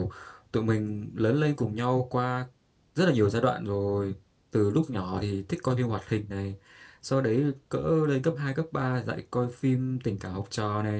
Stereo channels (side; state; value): both; identical; correlation 1.00